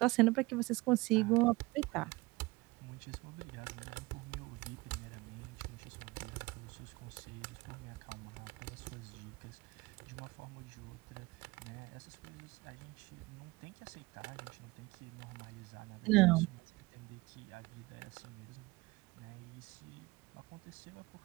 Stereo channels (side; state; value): left; quieter; 22.6 dB